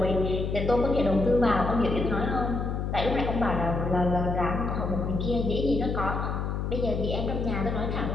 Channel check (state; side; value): noise; left; hum, 2 dB below the sound